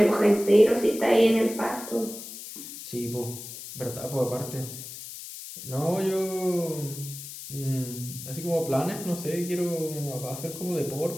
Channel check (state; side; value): noise; left; hiss, 11 dB below the sound